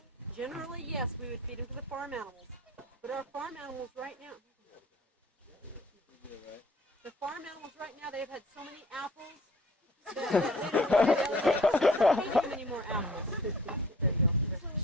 Generally, yes, we would feed them to the farm animals. But our farm animals right now, the farm animals right now, they've had so many apples that they don't feed them any more apples. There you go.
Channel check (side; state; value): both; normal; correlation 0.51